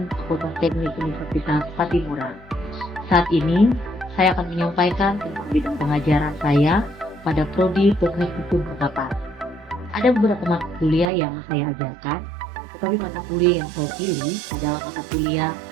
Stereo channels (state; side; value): drops out; left; at 11.1 s